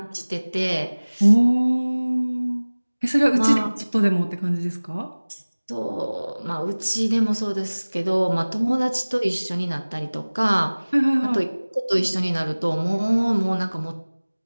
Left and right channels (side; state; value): both; inverted; correlation -1.00